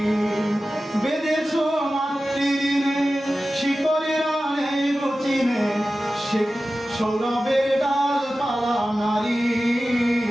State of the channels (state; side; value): normal; both; correlation 0.94